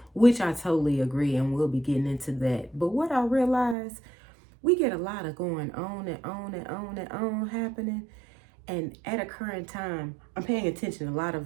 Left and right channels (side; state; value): left; drops out; at 3.8 s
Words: which I totally agree, and we'll be getting into that. But what I realize, we get a lot of going on and on and on and on happening. And at a current time, I'm paying attention. A lot